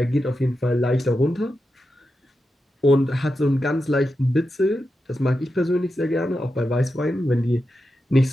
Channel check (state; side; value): normal; both; correlation 0.89